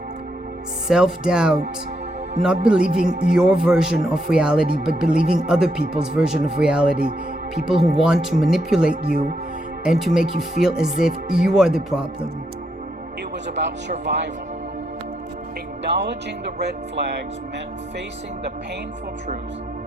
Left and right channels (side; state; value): both; normal; correlation 0.79